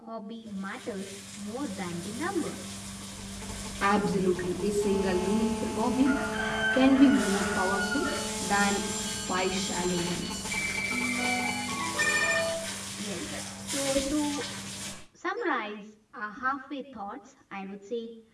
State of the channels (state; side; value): identical; both; correlation 1.00